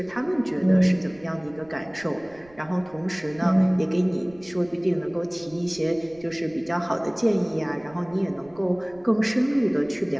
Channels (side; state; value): right; noise; rumble, 26 dB below the sound